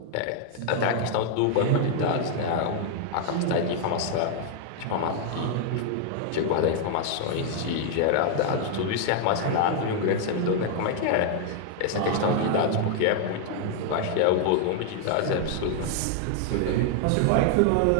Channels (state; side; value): different; both; correlation 0.00